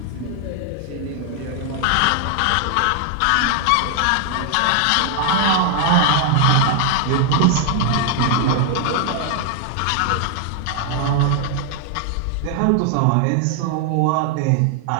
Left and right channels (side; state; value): both; different; correlation 0.00